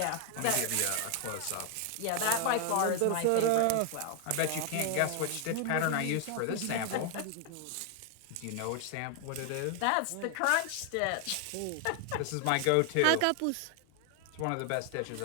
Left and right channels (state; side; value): different; both; correlation 0.00